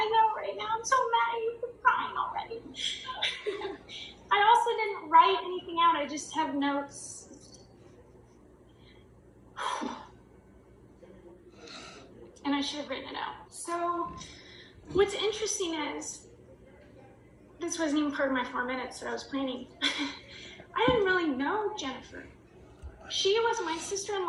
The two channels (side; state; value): both; identical; correlation 1.00